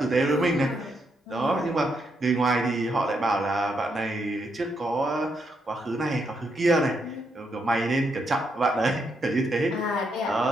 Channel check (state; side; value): normal; both; correlation 0.79